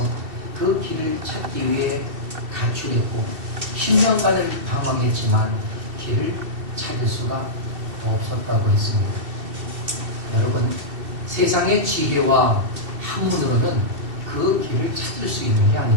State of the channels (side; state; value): left; late; 2.7 ms